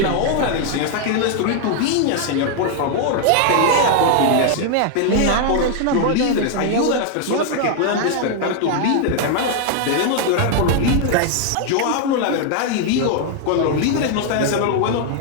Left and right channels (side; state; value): both; different; correlation 0.00